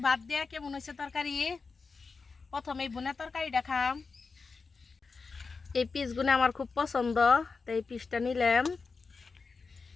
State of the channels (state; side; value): quieter; right; 4.6 dB